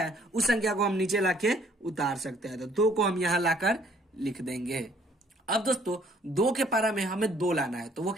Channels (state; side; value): normal; both; correlation 0.61